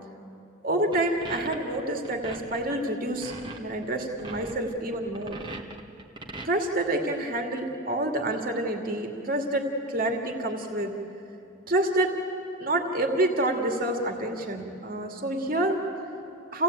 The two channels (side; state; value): both; normal; correlation 0.21